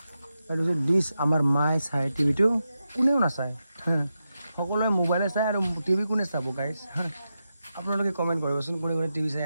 এইটো হৈছে ডিছ আমাৰ মায়ে চাই টিভিটো কোনেও নাচায় সকলোৱে মোবাইলে চাই আৰু টিভি কোনে চাব গাইছ আপোনালোকে কমেণ্ট কৰিবচোন কোনে টিভি চাই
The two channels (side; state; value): both; inverted; correlation -0.89